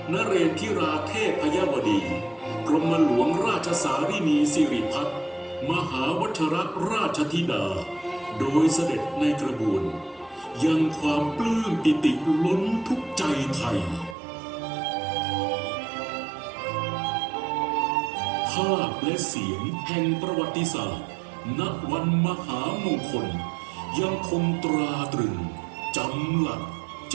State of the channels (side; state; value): left; drops out; at 14.2 s